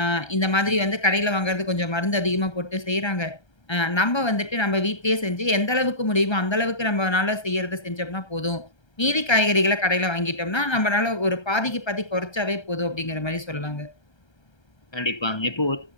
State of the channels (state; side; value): late; right; 1.3 ms